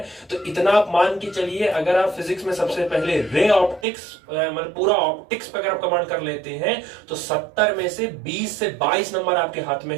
तो इतना आप मान के चलिए, अगर आप फिजिक्स में सबसे पहले रे ऑप्टिक्स मतलब पूरा ऑप्टिक्स पे अगर आप कमांड कर लेते हैं तो 70 में से 20 से 22 नंबर आपके हाथ में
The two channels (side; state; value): left; drops out; at 3.9 s